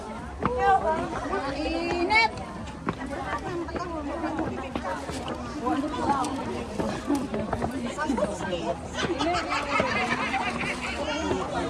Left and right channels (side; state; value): both; identical; correlation 1.00